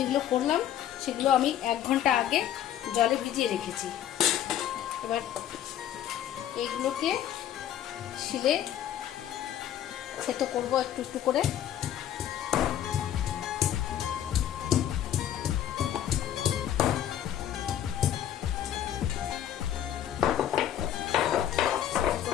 করলাম সেগুলো আমি 1 ঘন্টা আগে জলে ভিজিয়ে রেখেছি। এবার এইগুলোকে শিলে সেতো করবো একটু একটু করে।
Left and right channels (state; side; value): quieter; right; 10.9 dB